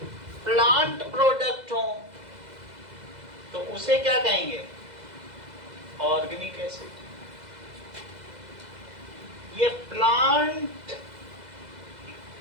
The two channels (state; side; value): late; left; 2.0 ms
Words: प्लांट प्रोडक्ट हो तो उसे क्या कहेंगे? Organic acid. ये प्लांट